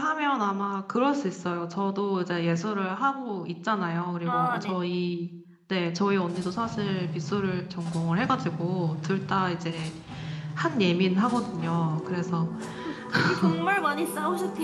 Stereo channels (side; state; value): both; identical; correlation 1.00